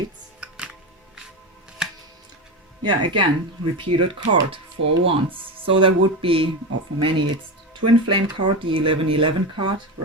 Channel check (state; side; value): normal; both; correlation 0.19